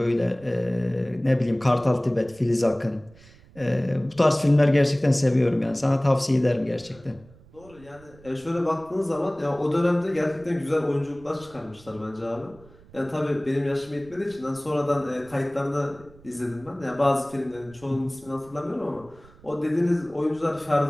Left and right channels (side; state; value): right; noise; rumble, 24 dB below the sound